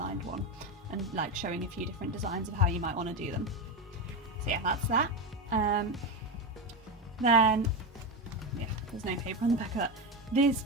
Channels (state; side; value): normal; both; correlation 0.14